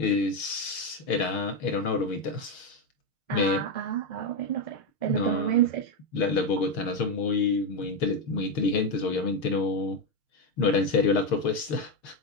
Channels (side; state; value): right; late; 6.5 ms